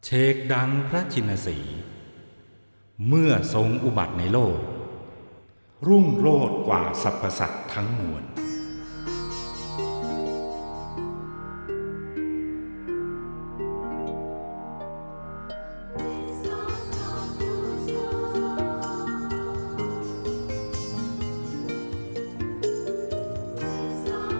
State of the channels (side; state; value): both; inverted; correlation -1.00